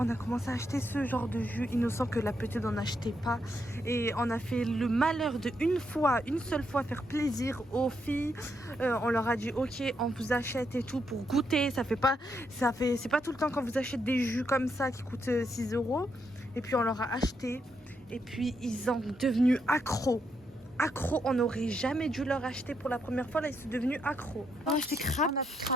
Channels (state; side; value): normal; both; correlation 0.79